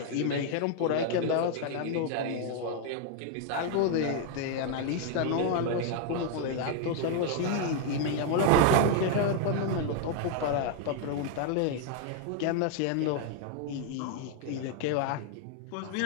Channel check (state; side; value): different; both; correlation 0.00